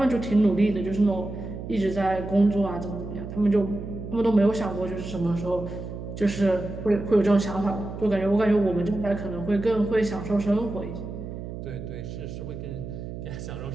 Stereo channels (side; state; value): right; noise; hum, 9 dB below the sound